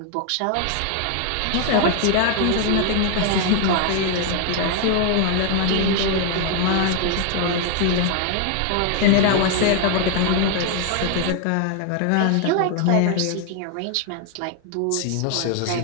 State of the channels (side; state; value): both; different; correlation 0.00